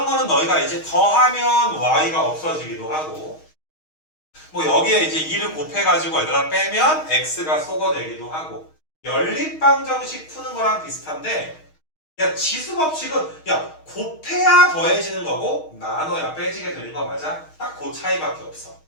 거는 너희가 이제 더하면 y가 없어지기도 하고 뭐 여기에 이제 2를 곱해가지고 얘들아 빼면 x가 소거되기도 하고 연립방정식 푸는 거랑 비슷한데 야 지수법칙은 야 곱해야 더해지는 거고 나눠야 빼지게 되는 거 맞아? 딱 그 차이밖에 없어.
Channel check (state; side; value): late; right; 6.4 ms